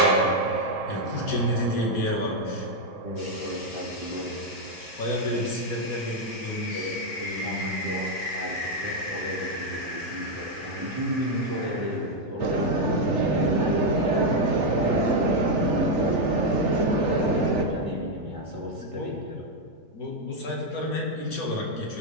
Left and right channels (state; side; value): normal; both; correlation 0.01